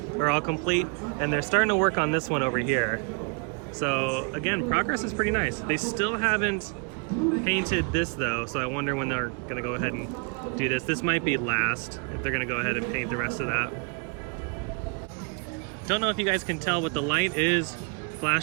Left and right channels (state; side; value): quieter; left; 35.5 dB